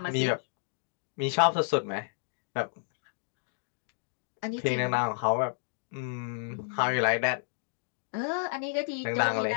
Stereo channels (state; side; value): silent; right; digital silence